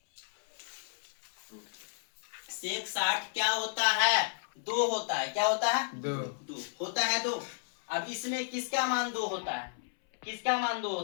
सेक 60 क्या होता है 2 होता है, क्या होता है 2 होता है 2। अब इसमें किसका मान 2 होता है, किसका मान 2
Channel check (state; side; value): silent; right; 56 dB below the other